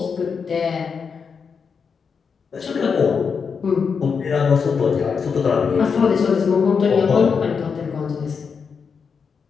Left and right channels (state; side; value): quieter; right; 5.9 dB